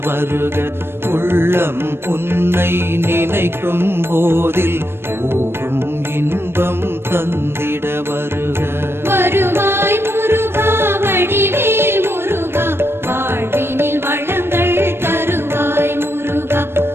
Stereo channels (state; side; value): late; left; 0.12 ms